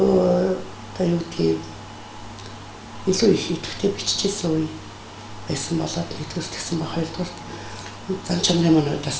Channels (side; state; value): both; identical; correlation 1.00